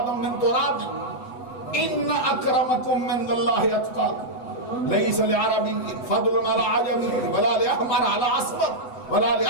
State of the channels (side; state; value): right; late; 8.0 ms